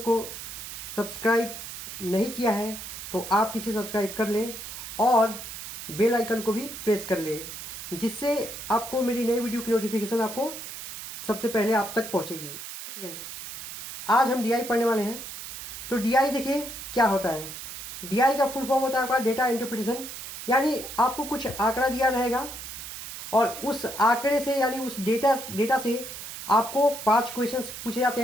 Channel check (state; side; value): noise; right; hiss, 10 dB below the sound